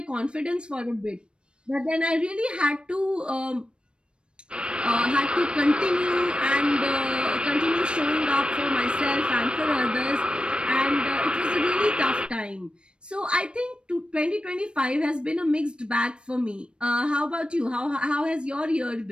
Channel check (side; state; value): left; late; 0.056 ms